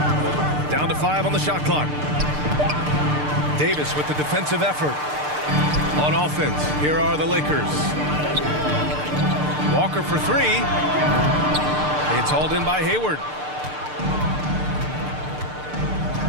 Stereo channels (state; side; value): late; left; 6.7 ms